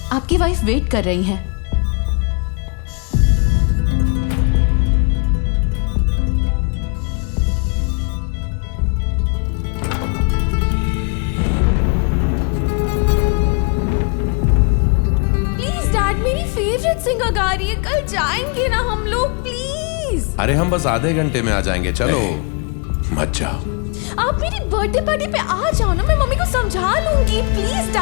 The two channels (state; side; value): quieter; right; 35.4 dB